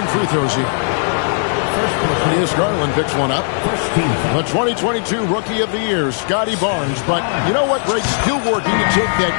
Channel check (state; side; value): silent; right; 68 dB below the other